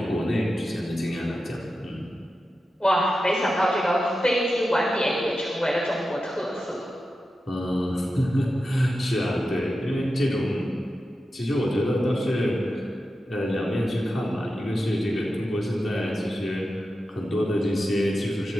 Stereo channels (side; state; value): both; normal; correlation 0.91